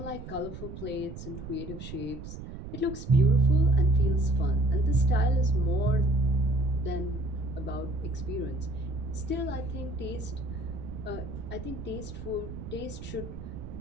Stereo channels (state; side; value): noise; right; rumble, 10 dB below the sound